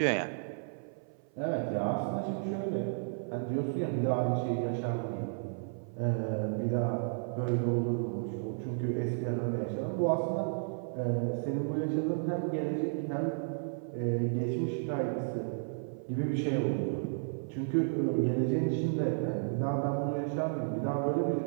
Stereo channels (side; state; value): left; silent; 56 dB below the other